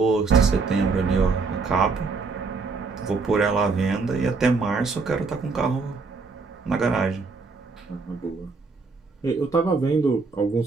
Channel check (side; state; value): left; quieter; 4.3 dB